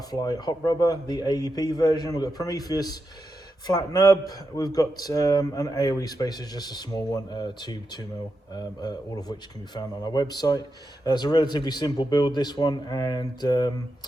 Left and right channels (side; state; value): both; normal; correlation 0.87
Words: hot rubber, the AEP version. We've got Prometheus Flat Nub. We've got an AOE Spacer, just a small one, 2mm, all of which can be found on our website. It's a relatively simple build, this one, and